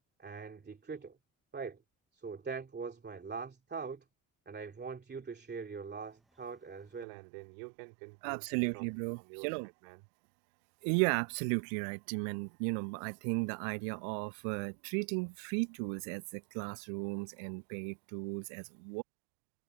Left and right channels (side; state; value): left; drops out; at 7.1 s